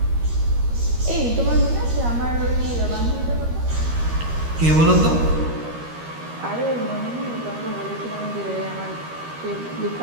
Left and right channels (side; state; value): left; late; 13 ms